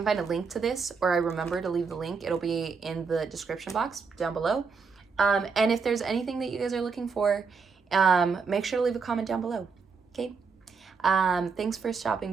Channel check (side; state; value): left; quieter; 5.2 dB